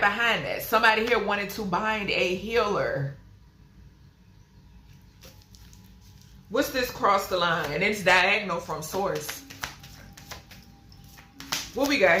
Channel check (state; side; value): identical; both; correlation 1.00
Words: that. Somebody here wanted to bind a healer. What's this cross the line? It's diagonal from source. What we got